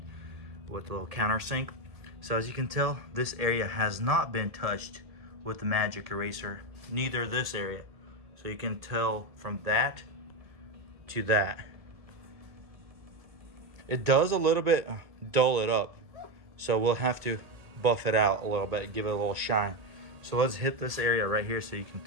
with a little countersink. So as you can tell, this area has not been touched with the magic eraser, neither this area. So you can tell from that to that. It does a little bit dull it up, so we'll have to buff it out a little bit, give it a little shine. So let's hit this area right here so you can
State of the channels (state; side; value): late; left; 1.8 ms